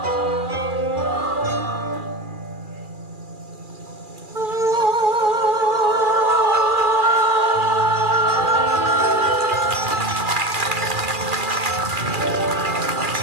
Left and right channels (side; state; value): left; late; 2.4 ms